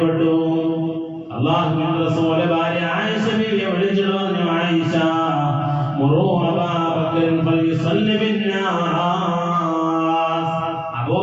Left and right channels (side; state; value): both; identical; correlation 1.00